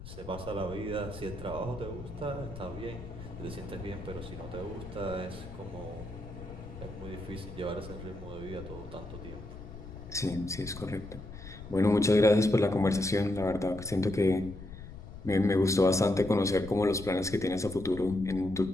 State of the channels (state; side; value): noise; left; rumble, 13 dB below the sound